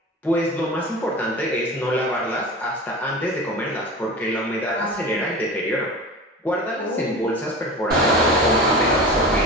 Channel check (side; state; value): both; normal; correlation 0.33